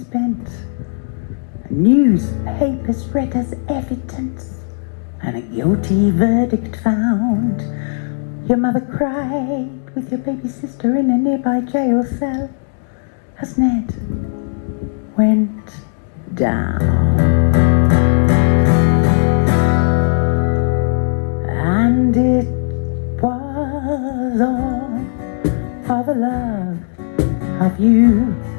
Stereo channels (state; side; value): silent; right; digital silence